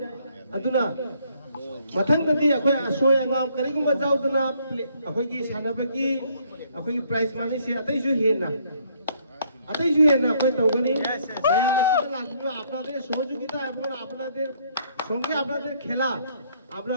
আদুনা মথংদতি আখোই আসোয় আঙ্গাম করিগুম বাজাউদনা আখোই কি সানাবকি ꯑꯩꯈꯣꯏꯒꯤ ꯄ꯭ꯔꯥꯏꯖ ꯃꯥꯅꯤꯁꯦ ꯑꯇꯩꯁꯨ ꯍꯦꯟꯅ ꯑꯩꯈꯣꯏ ꯇꯧꯒꯅꯤ ꯃꯌꯥꯝ ꯑꯁꯤꯗ ꯂꯥꯛꯄꯤꯕ আপনাদের সহযোগিতা এবং আপনাদের সঙ্গে আপনাদের খেলা আমরা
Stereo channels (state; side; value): inverted; both; correlation -0.67